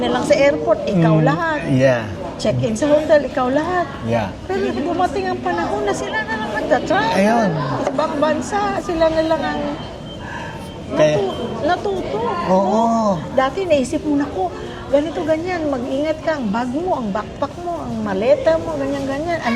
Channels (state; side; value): identical; both; correlation 1.00